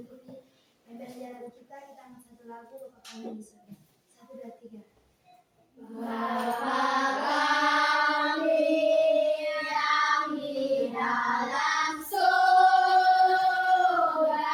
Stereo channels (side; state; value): both; identical; correlation 1.00